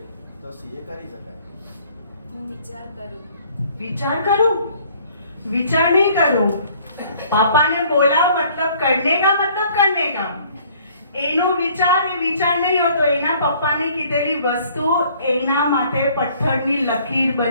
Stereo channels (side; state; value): both; inverted; correlation -0.57